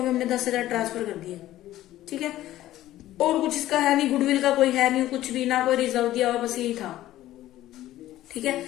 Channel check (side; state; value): right; quieter; 14.4 dB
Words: में हमने 10,000 ट्रांसफर कर दिए। ठीक है, और कुछ इसका है नहीं, गुडविल का कोई है नहीं, कुछ भी ना कोई रिजर्व दिया हुआ, बस यही था। ठीक है,